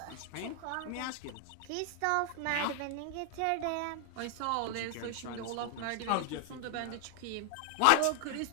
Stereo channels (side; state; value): both; different; correlation 0.00